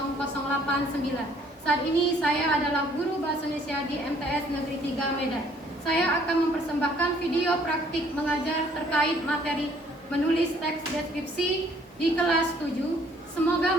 Saat ini saya adalah guru bahasa Indonesia di MTS Negeri 3 Medan. Saya akan mempersembahkan video praktik mengajar terkait materi menulis teks deskripsi di kelas 7. Semoga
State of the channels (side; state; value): both; normal; correlation 0.61